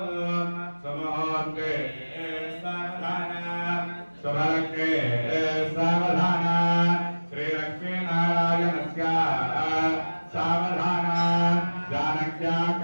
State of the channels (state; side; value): inverted; both; correlation -1.00